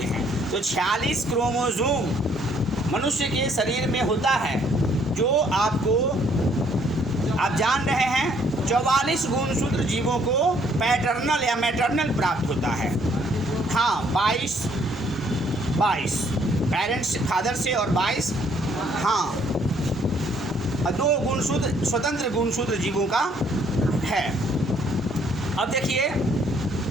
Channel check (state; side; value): normal; both; correlation 0.65